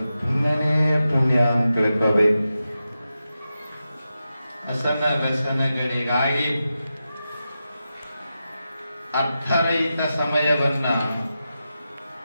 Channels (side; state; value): both; inverted; correlation -0.91